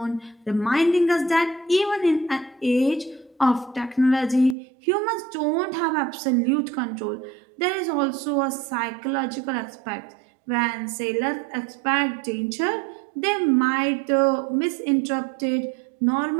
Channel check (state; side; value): drops out; left; at 4.5 s